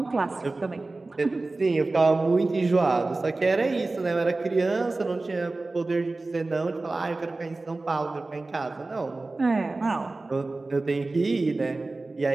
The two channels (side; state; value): left; quieter; 3.3 dB